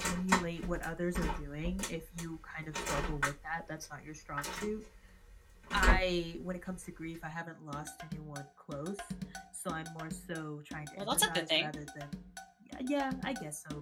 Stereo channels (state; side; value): identical; both; correlation 1.00